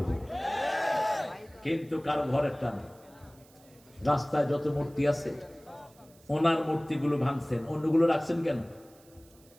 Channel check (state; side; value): noise; right; hiss, 28 dB below the sound